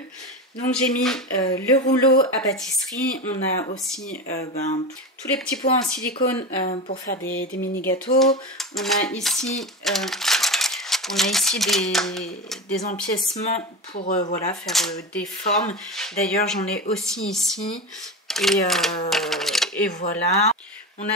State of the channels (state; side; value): normal; both; correlation 0.23